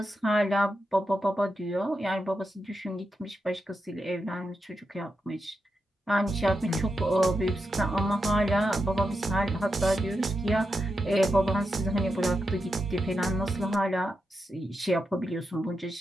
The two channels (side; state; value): both; normal; correlation 0.87